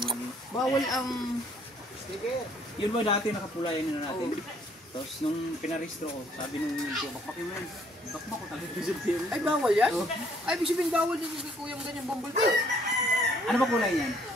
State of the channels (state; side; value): normal; both; correlation 0.63